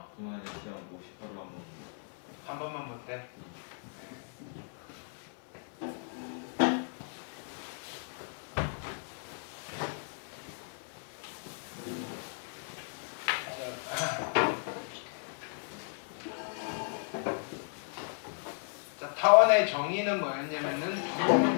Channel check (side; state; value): right; silent; 54 dB below the other